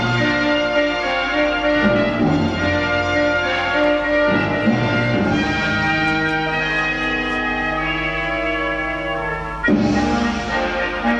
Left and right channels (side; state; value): both; identical; correlation 1.00